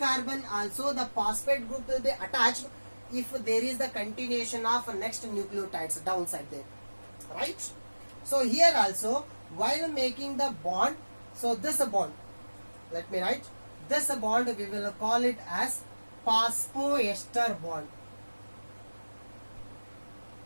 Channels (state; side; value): inverted; both; correlation -1.00